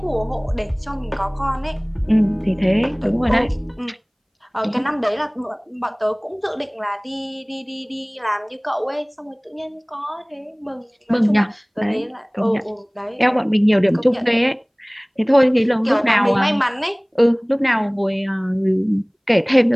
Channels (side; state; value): both; identical; correlation 1.00